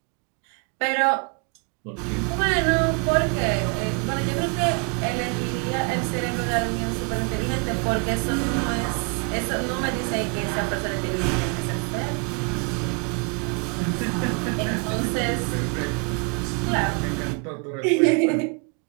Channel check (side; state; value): left; quieter; 35.5 dB